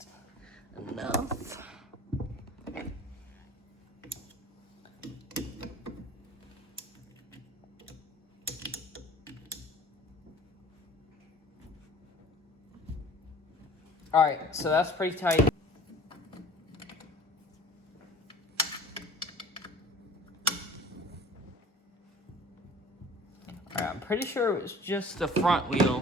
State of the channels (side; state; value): both; normal; correlation 0.46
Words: enough. All right, so that's pretty tight. All right, I'm pretty sure it was just the front